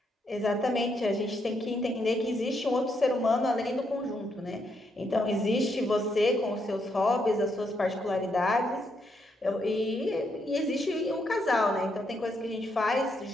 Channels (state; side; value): normal; both; correlation 0.78